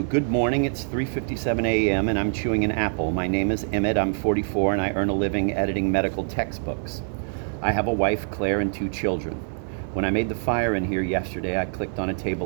Good morning. It's 3:57 a.m. and I'm chewing an apple. My name is Emmett. I'm 44 and I earn a living editing medical textbooks. I have a wife, Claire, and 2 children. When I made the fire in here yesterday, I clicked on a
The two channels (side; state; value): left; silent; digital silence